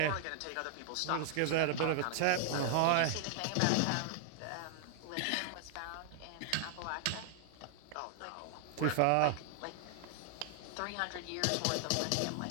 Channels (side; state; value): both; different; correlation 0.00